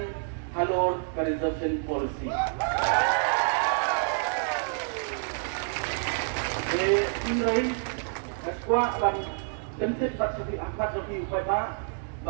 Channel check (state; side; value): silent; left; 59 dB below the other